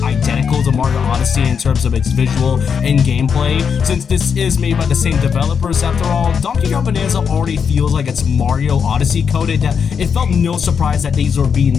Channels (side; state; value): right; quieter; 6.7 dB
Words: identical to Mario Odyssey in terms of its visual and gameplay. Since this is made by the same developers after all, Donkey Kong Bananza already feels like it's Mario Odyssey coded, that it felt no surprise that these were being